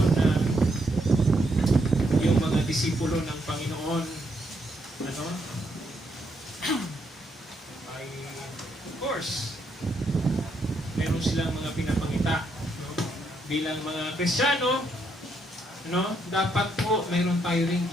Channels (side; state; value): both; normal; correlation 0.76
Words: na yung mga disipulo ng Panginoon ay of course meron silang mga pinapangita, no? Bilang mga Kristiyano, no? Dapat po meron tayo ring